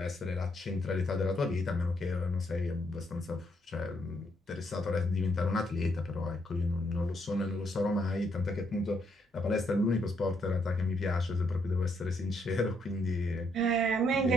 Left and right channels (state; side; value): normal; both; correlation 0.74